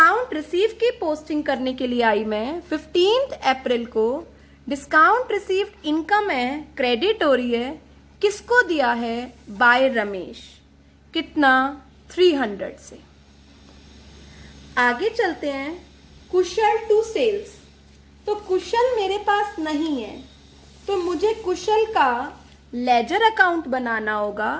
रिसीव की पोस्टिंग करने के लिए आई मैं 15 अप्रैल को। डिस्काउंट रिसीव्ड इनकम है, क्रेडिट हो रही है, किसको दिया है? बाय रमेश। कितना? 300 से। आगे चलते हैं, कुशल टू सेल्स। तो कुशल मेरे पास नहीं है, तो मुझे कुशल का लेजर अकाउंट बनाना होगा।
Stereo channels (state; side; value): identical; both; correlation 1.00